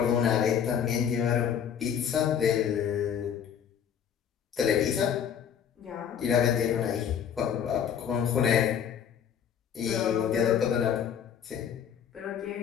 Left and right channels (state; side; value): quieter; right; 8.3 dB